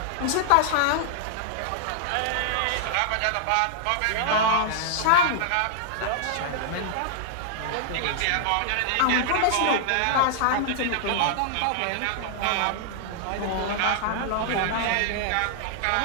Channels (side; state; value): both; different; correlation -0.01